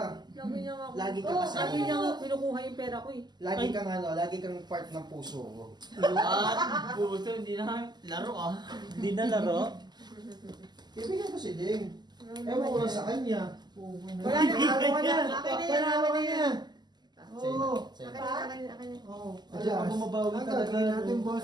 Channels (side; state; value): left; late; 0.21 ms